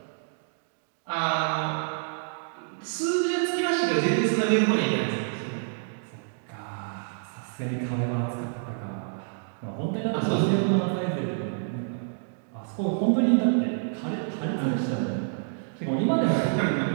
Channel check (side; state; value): left; silent; digital silence